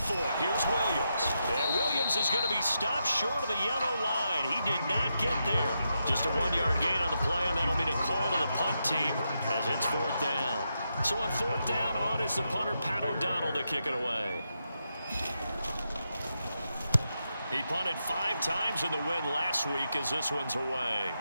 for it. Here's Williams. And Williams is going to be stopped short of the yellow line. He did not get there. Just a 1-yard gain on the play, and that'll be the call to the punt team as it's 4th down. So on 4th down, on is the punter, Pat O'Donnell, to kick it away. He punted 5 times in the win last week as this one's away.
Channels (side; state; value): both; inverted; correlation -0.85